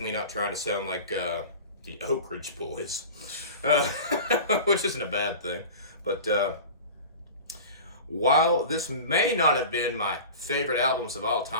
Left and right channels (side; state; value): both; inverted; correlation -0.35